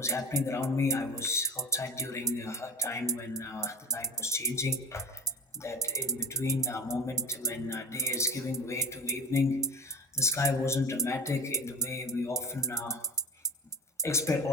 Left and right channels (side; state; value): both; normal; correlation 0.33